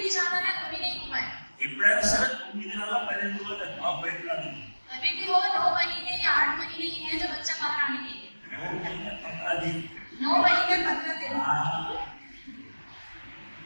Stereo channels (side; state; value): both; inverted; correlation -1.00